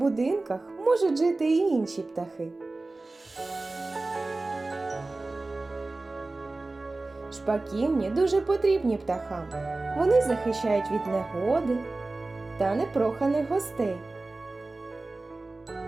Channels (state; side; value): quieter; left; 3.2 dB